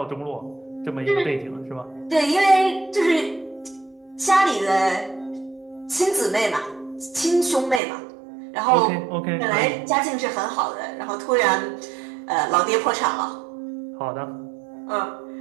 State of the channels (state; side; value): drops out; left; at 7.8 s